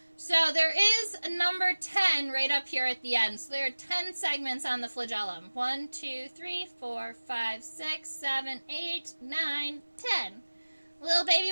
So there is a number 10 right up here at the end. So there are 10 segments on the flagellum. 1, 2, 3, 4, 5, 6, 7, 8, 9, 10. Little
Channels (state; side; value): inverted; both; correlation -1.00